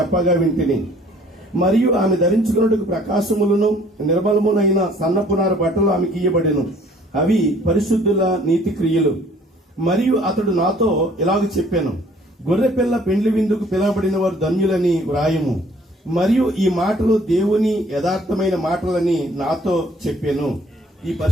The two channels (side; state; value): both; normal; correlation 0.57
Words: వింటిని. మరియు ఆమె ధరించుకున్నట్టుకు ప్రకాశములను నిర్మలమునైన సన్నపునార బట్టలు ఆమెకి ఇయ్యబడెను. అవి పరిశుద్ధుల నీతి క్రియలు. మరియు అతడు నాతో ఇలాగ చెప్పాను, గొర్రెపిల్ల పెండ్లి విందుకు పిలువబడిన వారు ధన్యులని వ్రాయము. మరియు ఈ మాటలు దేవుని యథార్థమైన మాటలని నాతో చెప్పాను. ఈ